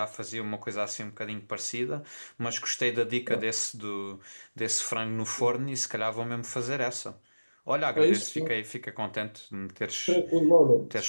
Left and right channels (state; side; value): inverted; both; correlation -1.00